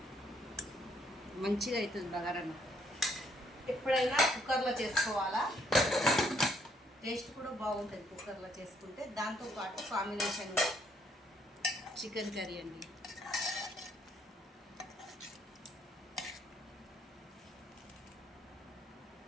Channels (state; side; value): normal; both; correlation 0.70